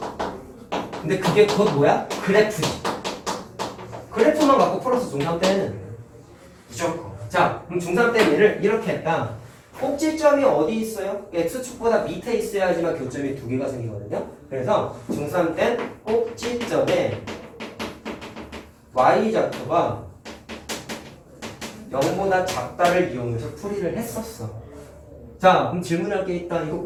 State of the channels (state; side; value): identical; both; correlation 1.00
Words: 근데 그게 곧 뭐야? 그래프지. 그래프만 갖고 풀어서 중3 때는 무조건. 자, 그럼 중3 때 얘를 이렇게 했다. 꼭지점이 어디 있어요? X축보다 밑에 있어야지만 교점이 두 개가 생기거든요. 그래서 중3 때 꼭지점에 Y좌표가 0보다 작다를 이용해서 풀이를 했었어. 자, 그럼 질문할 게 있다. 이거